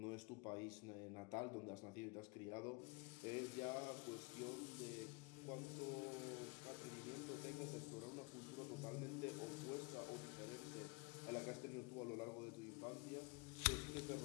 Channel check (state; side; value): quieter; right; 28.4 dB